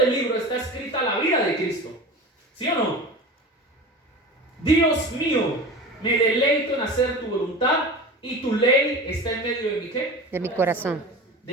libro está escrita la vida de Cristo. ¿Sí o no? Dios mío, me deleito en hacer tu voluntad y tu ley está en medio de mi ¿qué? De mi corazón.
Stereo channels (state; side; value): normal; both; correlation 0.33